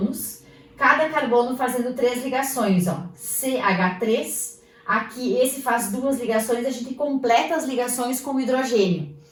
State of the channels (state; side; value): identical; both; correlation 1.00